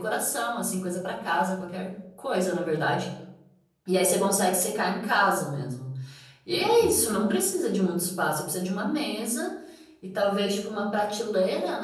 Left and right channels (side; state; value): both; identical; correlation 1.00